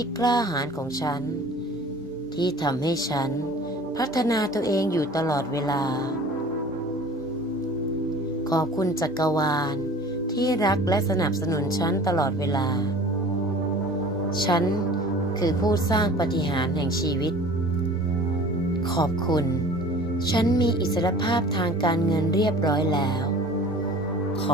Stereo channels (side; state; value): both; normal; correlation 0.44